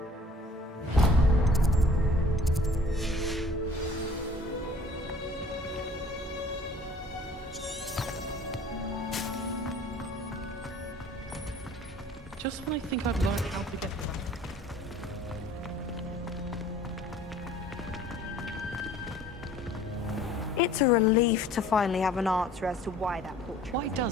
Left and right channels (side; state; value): both; normal; correlation 0.51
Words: Just when I think I've learned how to get It's a relief to finally have an answer as to why that portrait. Why